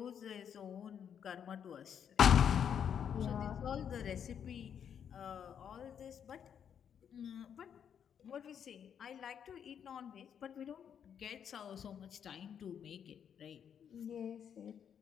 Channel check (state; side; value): quieter; right; 8.2 dB